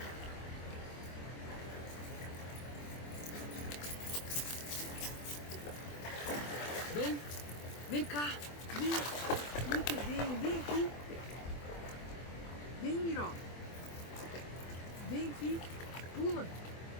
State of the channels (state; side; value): late; right; 24 ms